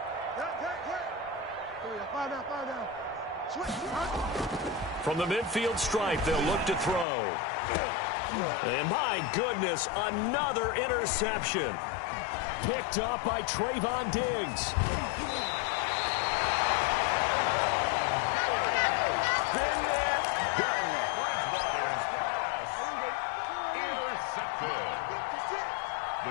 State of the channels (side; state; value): right; drops out; at 7.1 s